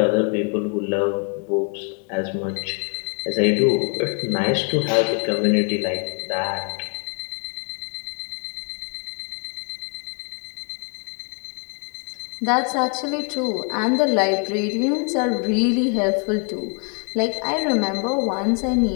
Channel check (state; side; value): quieter; right; 38.2 dB